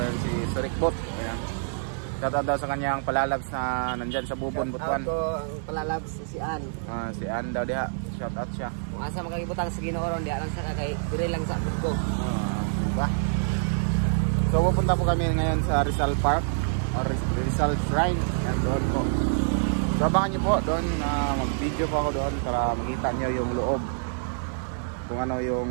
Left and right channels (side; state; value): left; silent; digital silence